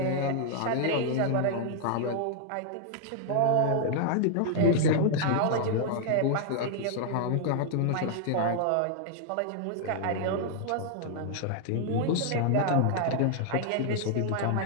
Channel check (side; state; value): both; different; correlation 0.00